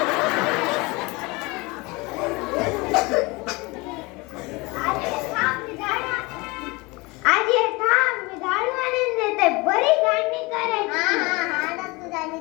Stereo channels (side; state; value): right; quieter; 25.0 dB